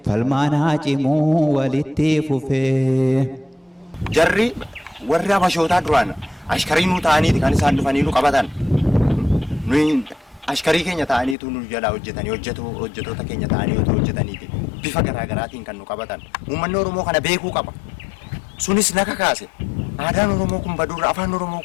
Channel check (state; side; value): drops out; right; at 11.4 s